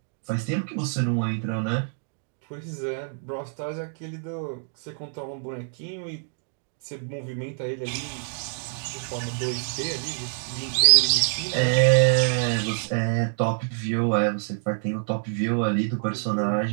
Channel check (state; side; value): silent; left; digital silence